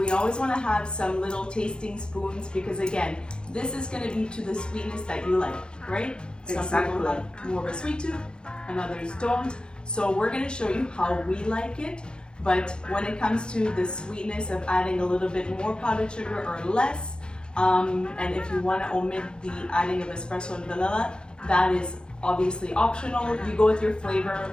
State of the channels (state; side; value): late; right; 0.049 ms